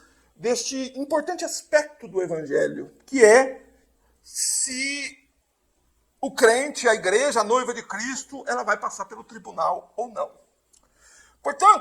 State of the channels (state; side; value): identical; both; correlation 1.00